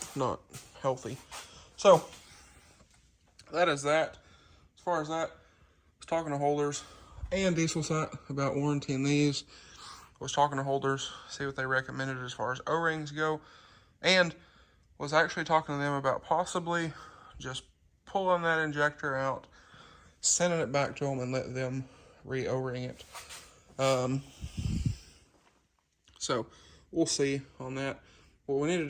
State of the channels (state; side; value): identical; both; correlation 1.00